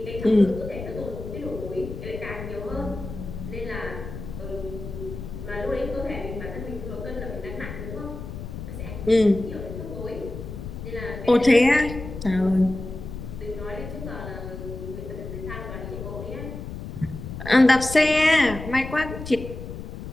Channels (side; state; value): left; noise; rumble, 9 dB below the sound